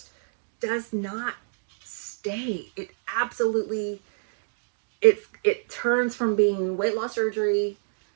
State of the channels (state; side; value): silent; left; digital silence